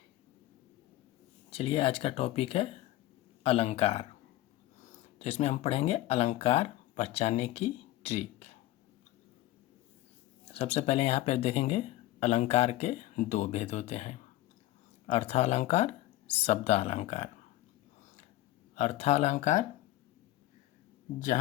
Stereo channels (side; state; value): right; quieter; 15.8 dB